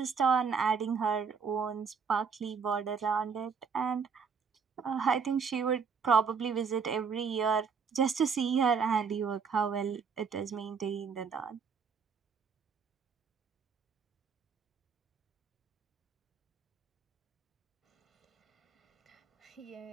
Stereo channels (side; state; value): left; quieter; 5.9 dB